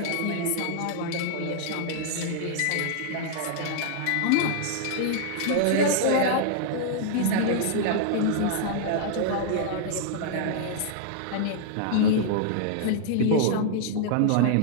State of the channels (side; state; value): both; different; correlation -0.01